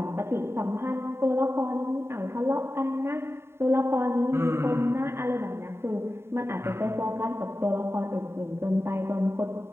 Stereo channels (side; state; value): left; late; 0.12 ms